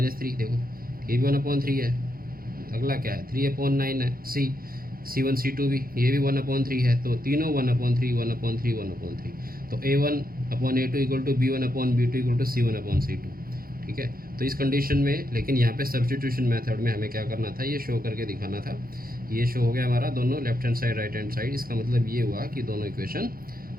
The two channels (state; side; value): late; left; 0.42 ms